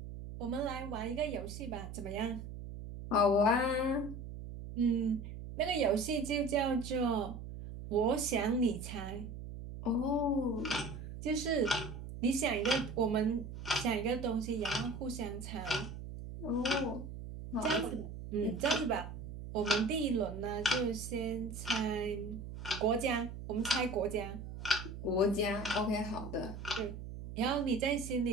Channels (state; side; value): noise; right; hum, 9 dB below the sound